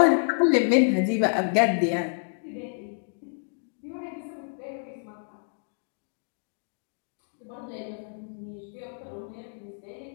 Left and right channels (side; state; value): right; silent; 59 dB below the other